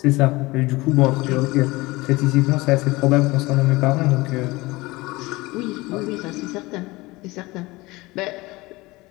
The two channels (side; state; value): right; quieter; 21.6 dB